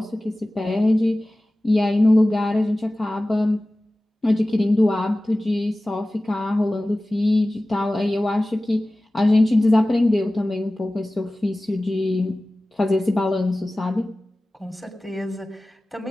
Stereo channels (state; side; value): normal; both; correlation 0.97